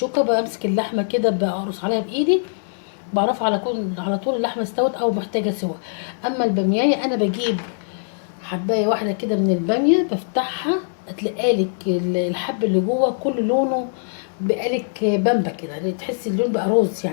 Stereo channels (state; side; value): silent; right; digital silence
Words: بمسك اللحمه كده بقرص عليها بايدي، بعرفها على طول اللحمه استوت او محتاجه سوا. اما الباميه انا بجيب حبايه واحده كده من الباميه بفتحها تلاقالك الحب اللي جوه كل لونه بقالك بامبا كده، تحسي اللون بقى روز